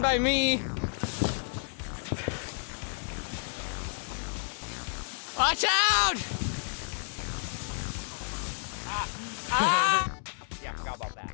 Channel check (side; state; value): right; silent; digital silence